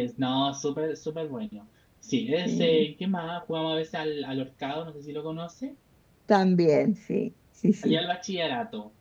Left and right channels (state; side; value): identical; both; correlation 1.00